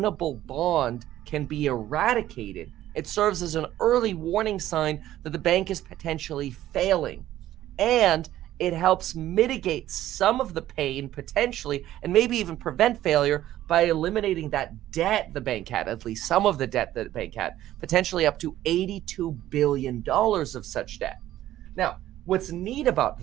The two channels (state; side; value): quieter; left; 13.5 dB